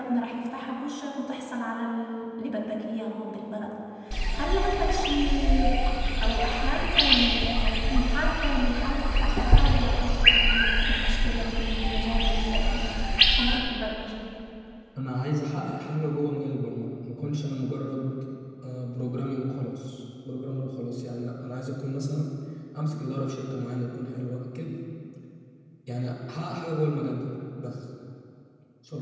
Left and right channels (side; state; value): both; identical; correlation 1.00